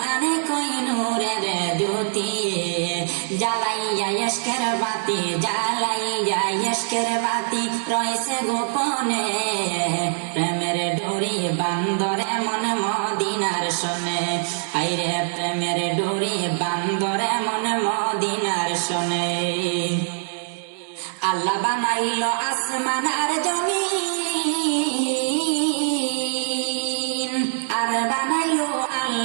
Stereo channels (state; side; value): silent; left; digital silence